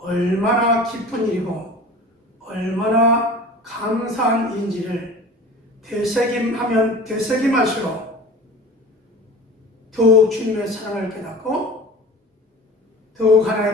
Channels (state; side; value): normal; both; correlation 0.39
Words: 기쁜 일이고 얼마나 감사한 일인지를 되새김하면 되새김할수록 더욱 주님의 사랑을 깨닫고 더욱